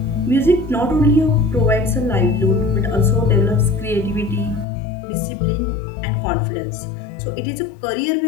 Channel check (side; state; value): right; drops out; at 4.7 s